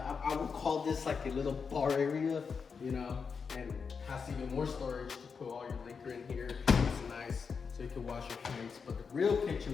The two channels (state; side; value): quieter; right; 5.7 dB